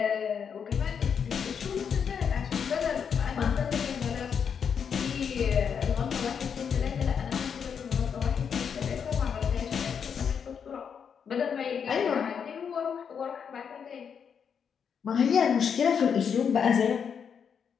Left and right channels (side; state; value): right; quieter; 7.1 dB